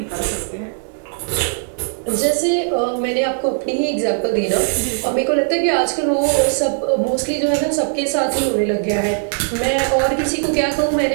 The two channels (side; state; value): left; silent; digital silence